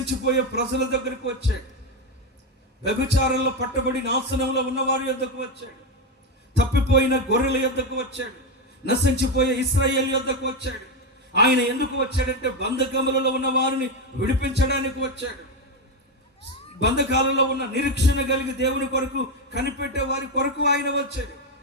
ప్రజల దగ్గరికి వచ్చాడు. వ్యభిచారంలో పట్టబడి నాశనంలో ఉన్న వారి యొద్దకు వచ్చాడు. తప్పిపోయిన గొర్రెల యొద్దకు వచ్చాడు. నశించిపోయే ఇశ్రాయేలు యొద్దకు వచ్చాడు. ఆయన ఎందుకు వచ్చాడంటే బంధకములలో ఉన్న వారిని విడిపించడానికి వచ్చాడు. బంధకాలలో ఉన్న నిరీక్షణ కలిగి దేవుని కొరకు కనిపెట్టే వారి కొరకు ఆయన వచ్చాడు.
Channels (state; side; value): normal; both; correlation 0.10